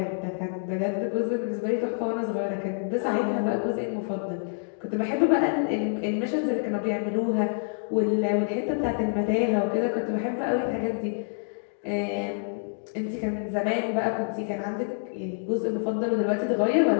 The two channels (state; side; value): silent; right; digital silence